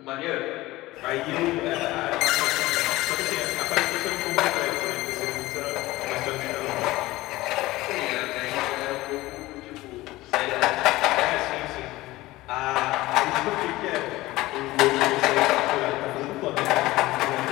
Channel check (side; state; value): right; quieter; 18.4 dB